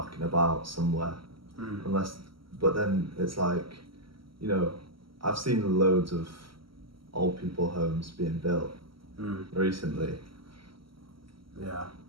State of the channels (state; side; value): late; left; 0.74 ms